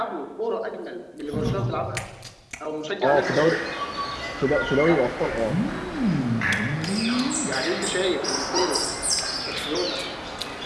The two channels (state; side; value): identical; both; correlation 1.00